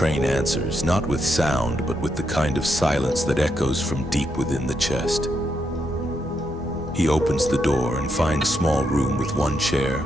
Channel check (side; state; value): both; normal; correlation 0.80